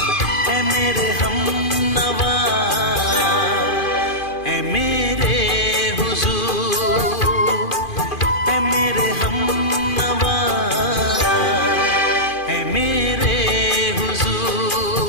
है मेरे हमनवा, है मेरे हुजूर, है मेरे हमनवा, है मेरे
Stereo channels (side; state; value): right; late; 2.5 ms